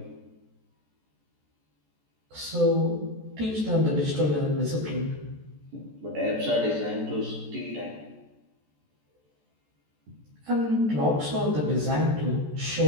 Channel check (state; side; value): late; left; 14 ms